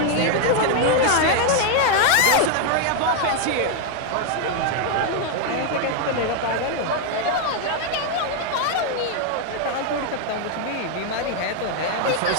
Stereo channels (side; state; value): both; different; correlation 0.01